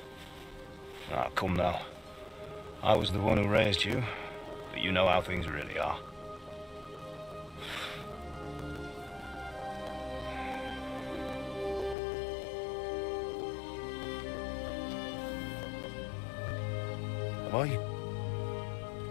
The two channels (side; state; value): right; drops out; at 12.0 s